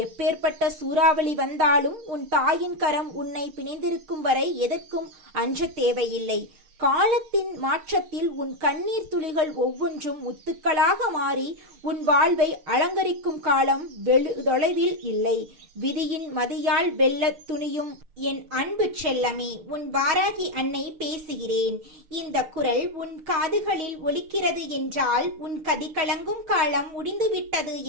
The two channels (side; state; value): left; late; 6.6 ms